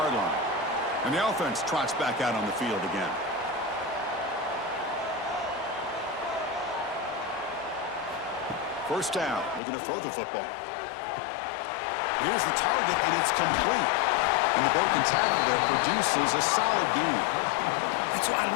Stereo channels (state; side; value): drops out; right; at 9.6 s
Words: line. And the offense trots back out on the field again. First down, looking to throw the football. Here's the target, and it's complete. And the broken tackle there produces a solid gain. That's what I